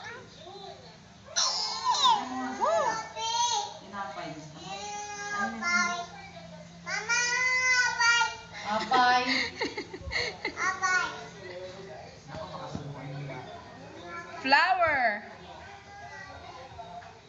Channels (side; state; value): both; identical; correlation 1.00